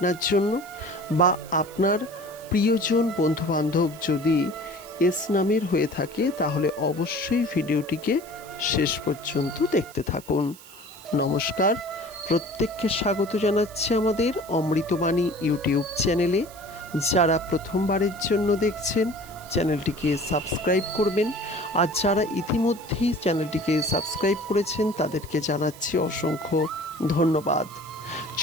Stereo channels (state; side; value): noise; right; hiss, 20 dB below the sound